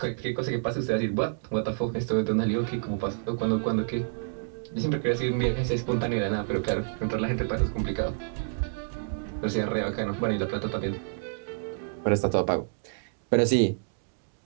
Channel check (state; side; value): silent; left; digital silence